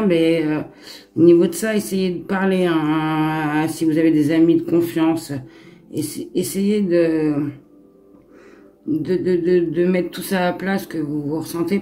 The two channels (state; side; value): identical; both; correlation 1.00